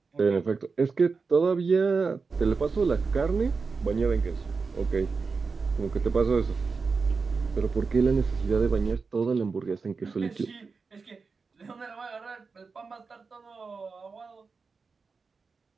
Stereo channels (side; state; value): left; quieter; 4.7 dB